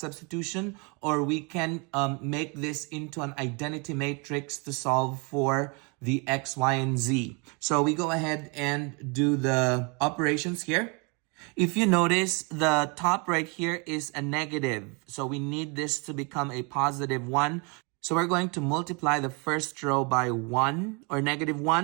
Or we can make this into an identity matrix to solve for the x, y, and z. So we go ahead and do the operations here. If you notice, the top right here is a negative. So we need this to become a positive 1. So we're going to multiply the first row by 1 or negative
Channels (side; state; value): left; quieter; 31.6 dB